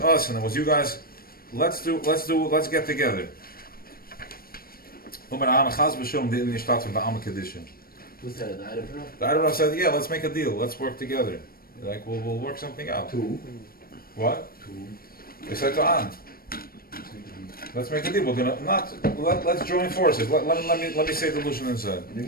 and it was you guys. Let's get together. Was that an item? The Erev said, yeah, let's make a deal. Let's work together. Like we'll work something out. Two. What? They said to An, let's make a deal. We're gonna let's join forces. Let me say the Lushan inside.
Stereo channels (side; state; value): right; late; 0.43 ms